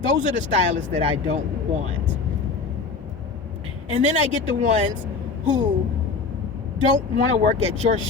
those are the stylists that I don't want. And then I get the ones who don't want to work at your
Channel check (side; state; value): right; quieter; 4.5 dB